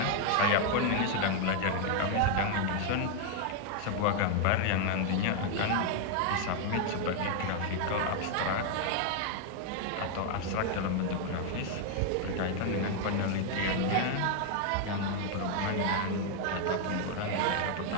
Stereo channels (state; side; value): different; both; correlation 0.00